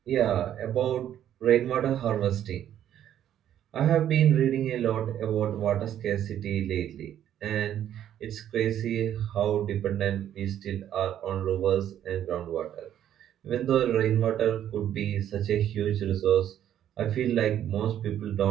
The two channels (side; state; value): left; quieter; 10.8 dB